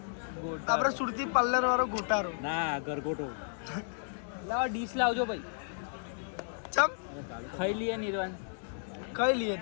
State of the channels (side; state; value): right; silent; digital silence